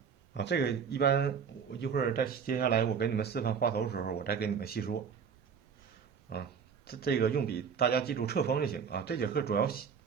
啊，这个一般我一会儿再接下来我给你们示范画头的时候，我再给你们细说。啊，这个用笔大家记住侧锋就行啊。这节课主要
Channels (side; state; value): left; quieter; 6.7 dB